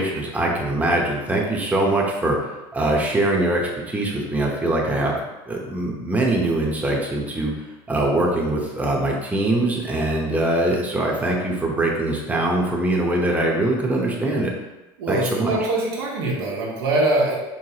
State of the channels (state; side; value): normal; both; correlation 0.53